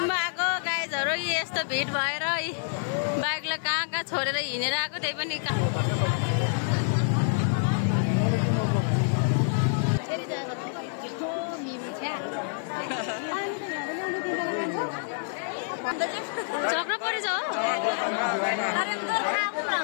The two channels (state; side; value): silent; right; digital silence